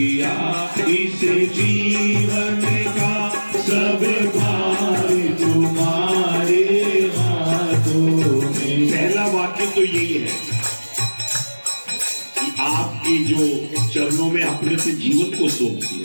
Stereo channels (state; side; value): inverted; both; correlation -1.00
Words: इस जीवन का सब भार तुम्हारे हाथों में। पहला वाक्य तो यही है कि आपके जो चरणों में अपने से जीवन को सौंप